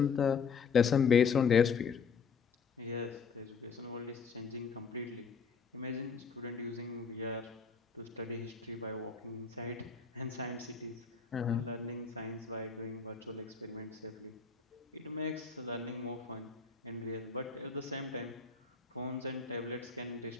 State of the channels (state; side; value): quieter; right; 5.6 dB